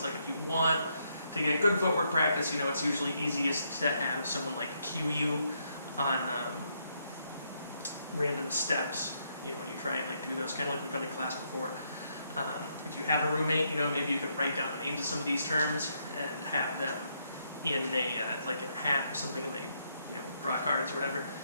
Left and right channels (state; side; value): inverted; both; correlation -0.76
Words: like, if you want to get good footwork practice, it's usually easiest to have someone like cue you on random steps, when you try and do those, kind of like we've done in class before. If you have a roommate, maybe you can write down the names of some of these terms and have them in a, like a hat or something, and they, draw cards or whatever.